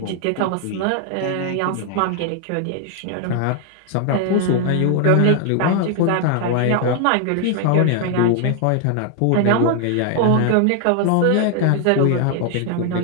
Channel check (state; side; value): different; both; correlation 0.00